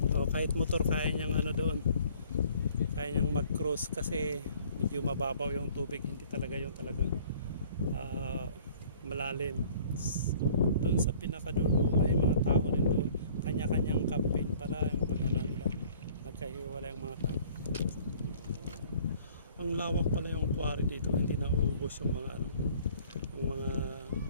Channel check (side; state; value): both; inverted; correlation -0.54